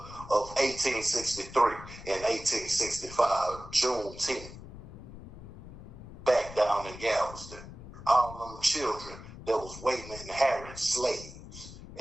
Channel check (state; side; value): noise; left; rumble, 14 dB below the sound